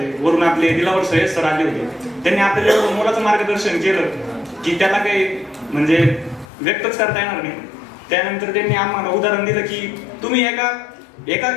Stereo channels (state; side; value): drops out; right; at 6.5 s